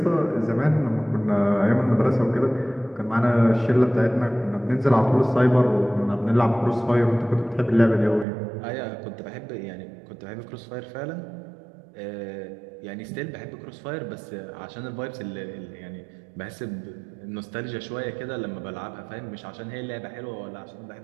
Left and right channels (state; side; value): drops out; left; at 8.2 s